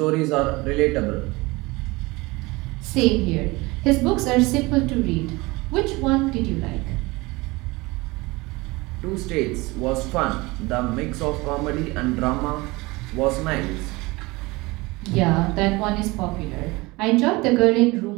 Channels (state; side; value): quieter; left; 22.8 dB